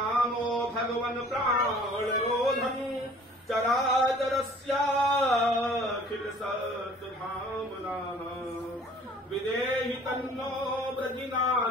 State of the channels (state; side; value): normal; both; correlation 0.51